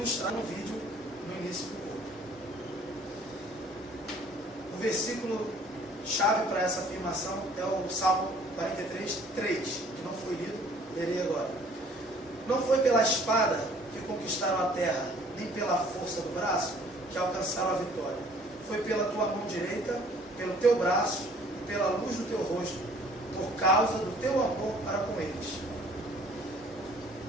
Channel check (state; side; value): normal; both; correlation 0.55